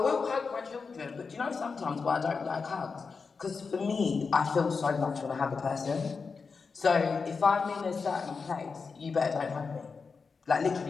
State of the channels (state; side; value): quieter; right; 4.9 dB